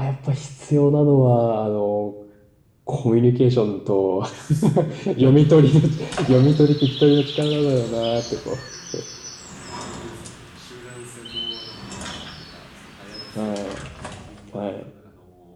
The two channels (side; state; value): both; identical; correlation 1.00